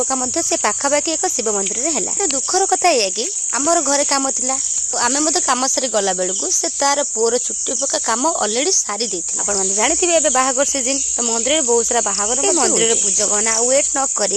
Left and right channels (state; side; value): identical; both; correlation 1.00